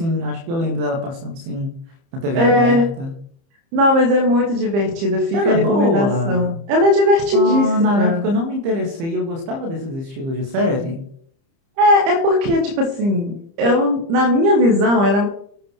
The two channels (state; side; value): late; left; 30 ms